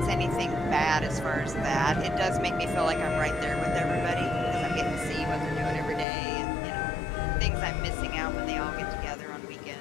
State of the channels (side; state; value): right; drops out; at 6.1 s